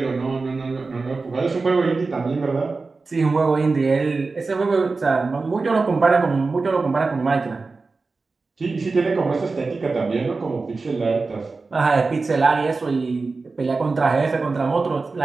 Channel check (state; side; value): quieter; left; 4.0 dB